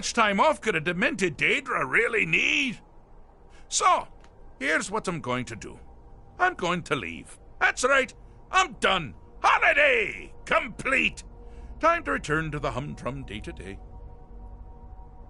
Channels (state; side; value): identical; both; correlation 1.00